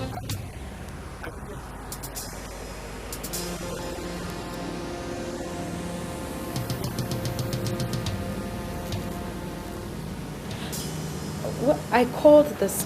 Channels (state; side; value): identical; both; correlation 1.00